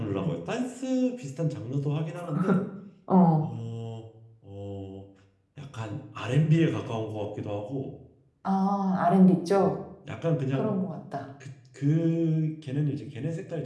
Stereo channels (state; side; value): identical; both; correlation 1.00